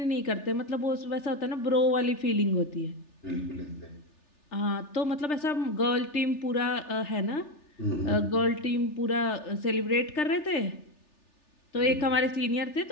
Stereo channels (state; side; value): late; right; 3.4 ms